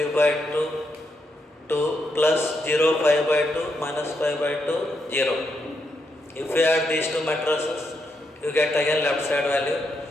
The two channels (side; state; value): both; normal; correlation 0.81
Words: by 2 2 plus 0 5 by 2 minus 5 by 2 0. If you add these two matrices, you get again left side value.